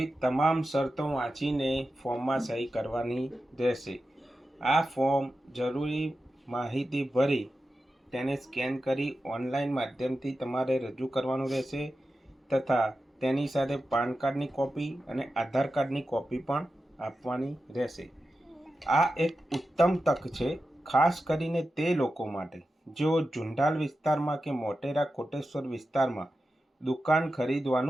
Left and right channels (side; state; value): both; normal; correlation 0.92